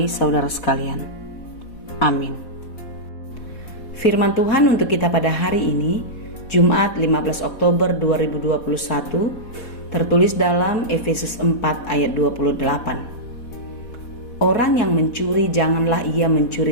saudara sekalian. Amin. Firman Tuhan untuk kita pada hari ini, Jumat 15 Oktober 2021, tertulis dalam Efesus 4 ayat 28. Orang yang mencuri janganlah ia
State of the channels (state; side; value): late; right; 4.1 ms